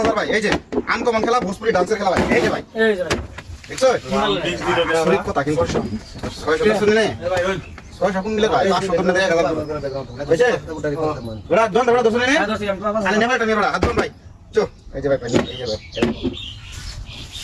ভাই, এই যে আনকমন খেলা ভোজপুরি ডান্সের খেলা ভাই, এই যে ভাই দেখছো শরীর কথা কিন্তু 600 শুনে নে 600 কোন মিলে ভাই 500 কোন দেয়া গেল বুঝছে ওরা দন ওরা দশ নে আরে নেবাটা নেবাটা হাত দন ভাই চো এই যে ভাই এই যে ভাই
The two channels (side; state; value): both; identical; correlation 1.00